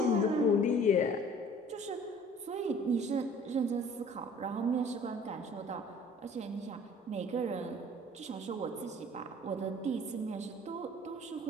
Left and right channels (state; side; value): normal; both; correlation 0.50